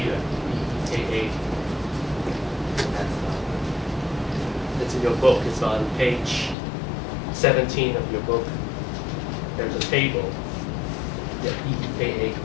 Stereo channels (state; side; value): drops out; right; at 6.6 s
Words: DEKA. It's in your book. It's on page 17 of your book. There's a table. Yeah, DEKA